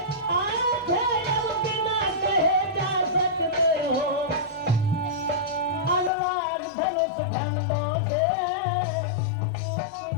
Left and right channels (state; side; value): drops out; right; at 6.1 s